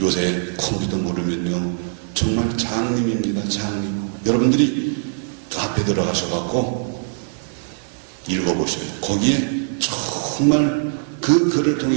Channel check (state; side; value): silent; left; digital silence